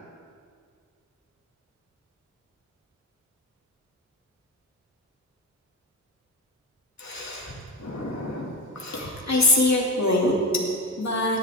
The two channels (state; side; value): normal; both; correlation 0.17